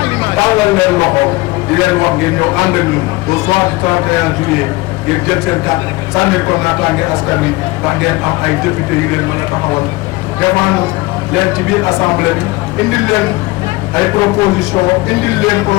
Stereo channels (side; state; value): right; quieter; 21.8 dB